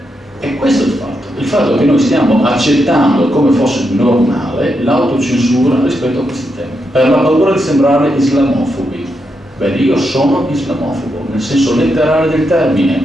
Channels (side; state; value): both; normal; correlation 0.83